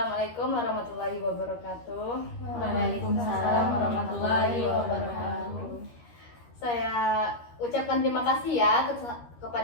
warahmatullahi wabarakatuh. Waalaikumsalam warahmatullahi wabarakatuh. Saya ucapkan terima kasih ya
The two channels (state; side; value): late; right; 13 ms